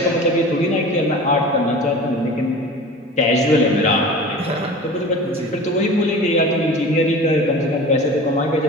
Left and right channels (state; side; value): normal; both; correlation 0.37